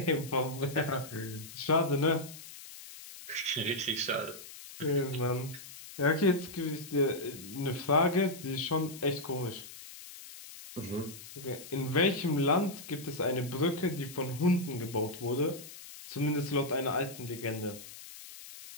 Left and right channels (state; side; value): noise; left; hiss, 15 dB below the sound